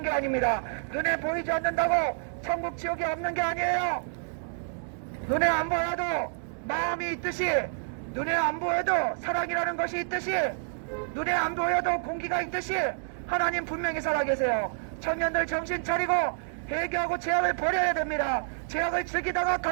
게 아닙니다. 눈에 보이지 않는다고 천국 지옥이 없는 게 아니에요. 눈에 안 보여도 마음이 있듯이, 눈에 안 보여도 사랑이라는 것이 있듯이, 눈에 안 보여도 공기가 있듯이 하나님 분명히 살아계세요. 청년들 정신 차리고 회개하고 죄악을 버려야 됩니다. 죄악을 즐기다가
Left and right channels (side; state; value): left; silent; digital silence